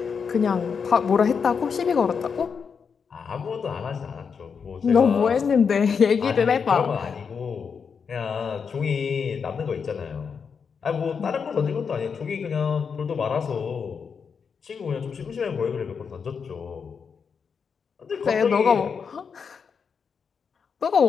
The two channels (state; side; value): quieter; right; 6.1 dB